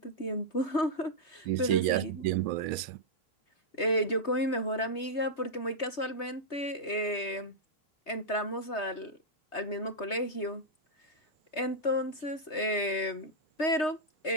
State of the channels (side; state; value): right; late; 3.2 ms